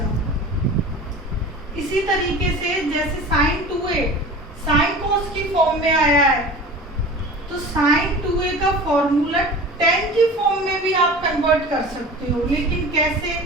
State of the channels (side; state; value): both; normal; correlation 0.37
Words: इसी तरीके से जैसे साइन 2a साइन कॉस की फॉर्म में आया है, तो साइन 2a का फॉर्मूला tan की फॉर्म में भी आप कन्वर्ट कर सकते हो, लेकिन कैसे,